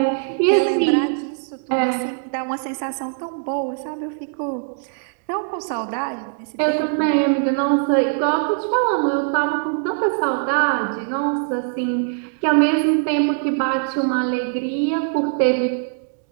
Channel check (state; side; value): silent; left; digital silence